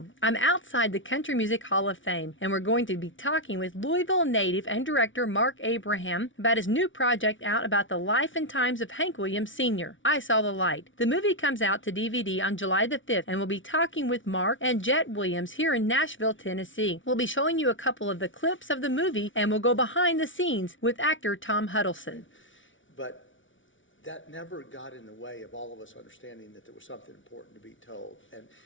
I'm outside the Country Music Hall of Fame, and we're going to be talking with Louisville native and director Mark Abraham about his new project out about the life and times of Hank Williams Sr., I Saw the Light. The movie comes out to DVD on July the 5th, and we'll be talking with Mark and Jet Williams here in Nashville, Tennessee. We'll be showing you a couple of the clips of the movie, and we'll go behind the scenes with actor Tom Huddleston. But that never got in the way of all of us understanding that there was something important to be told. And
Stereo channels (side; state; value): right; late; 0.56 ms